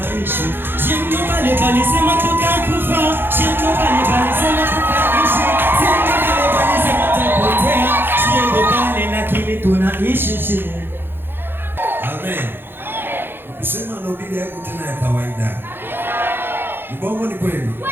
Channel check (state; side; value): late; left; 0.10 ms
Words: shindo bale sema tutakufa, shindo bale sema tutaishi, shindo bale sema tutapotea, shindo bale lakini tunaishi. Amen. Ukisema ndo Biblia yako tena ya kawaida. Mbongo ni kweli?